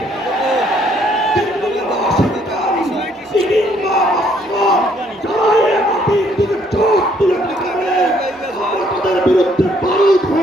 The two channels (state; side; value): normal; both; correlation 0.66